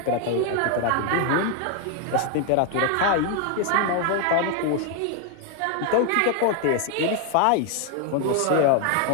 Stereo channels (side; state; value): both; different; correlation 0.00